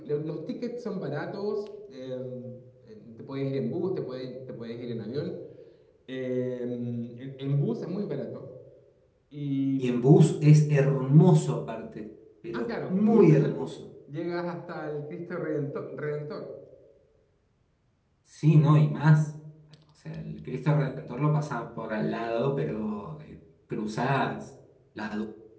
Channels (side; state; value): both; identical; correlation 1.00